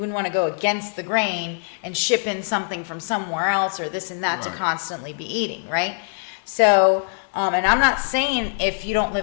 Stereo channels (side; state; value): right; silent; digital silence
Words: want to go against the grain and ship in something from somewhere else or this and that to constantly be eating, right? So, and I'm not saying if you don't